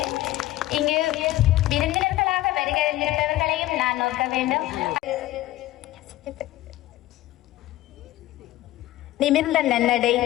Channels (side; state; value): right; quieter; 15.9 dB